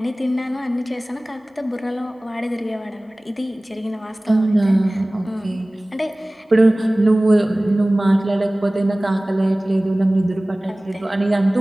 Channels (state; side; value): normal; both; correlation 0.98